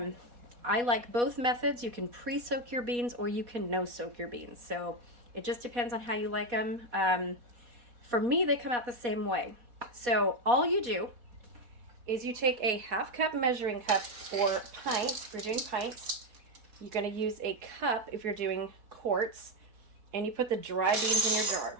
like both methods. You can pre-soak your beans or you can no-soak your beans. So it just depends on how you like them. For me, they come out the same way. So all you do is you take a 1/2 cup measuring cup for pints. If you're doing pints, you're going to use a cup if you're doing quarts, and you put the dry beans in your jar.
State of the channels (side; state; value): left; late; 4.2 ms